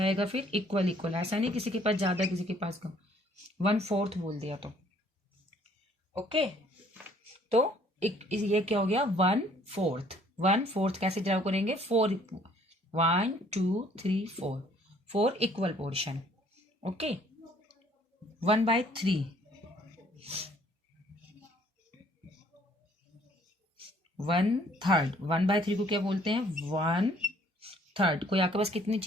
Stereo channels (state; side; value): normal; both; correlation 0.60